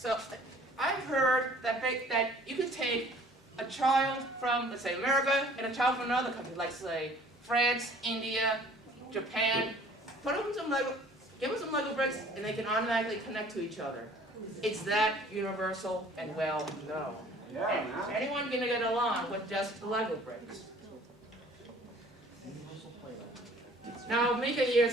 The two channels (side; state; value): both; normal; correlation 0.53